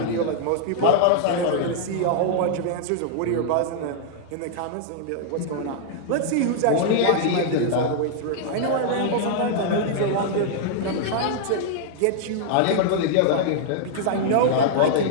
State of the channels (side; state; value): both; different; correlation -0.01